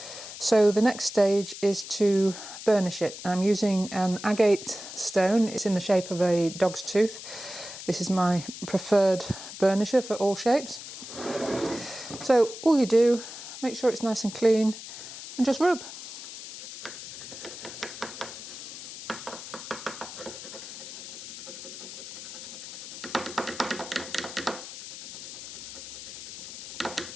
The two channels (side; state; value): left; noise; hiss, 11 dB below the sound